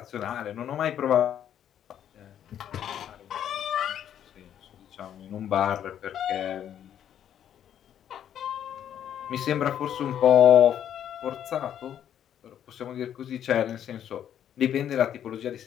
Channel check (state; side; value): quieter; right; 10.0 dB